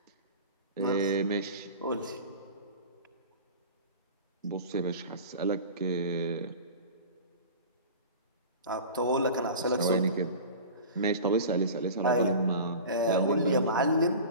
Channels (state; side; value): inverted; both; correlation -0.35